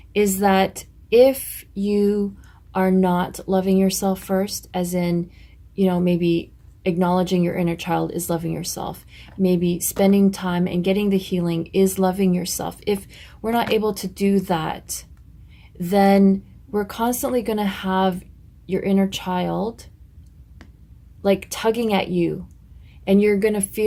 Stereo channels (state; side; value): identical; both; correlation 1.00